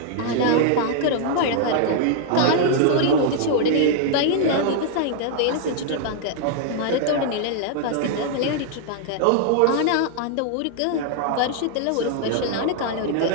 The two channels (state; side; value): different; both; correlation -0.01